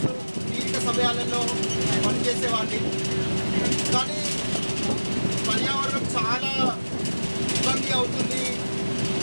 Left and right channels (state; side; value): inverted; both; correlation -1.00